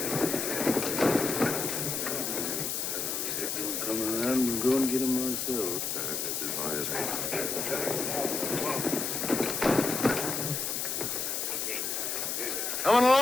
Coming around and go and get him myself. Coming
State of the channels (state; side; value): noise; left; hiss, 1 dB below the sound